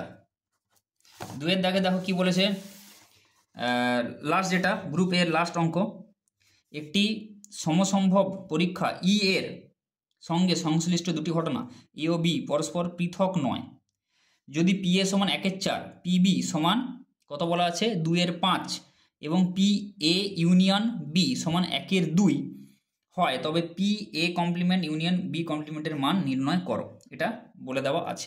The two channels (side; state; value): both; identical; correlation 1.00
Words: দাগে দেখো কি বলেছে, লাস্ট যেটা গ্রুপ এর লাস্ট অঙ্ক, একটি সমসম্ভব পরীক্ষা ই এর সঙ্গে সংশ্লিষ্ট দুটি ঘটনা এ ও বি পরস্পর পৃথক নয়, যদি পি এ সমান 1 এর 4, পি বি সমান কত বলা আছে 2 এর 5 এবং পি এ ইউনিয়ন বি সমান 1 এর 2 হয়, তবে P A complement union B কমপ্লিমেন্টের মান নির্ণয় করো, এটা বলে দেওয়া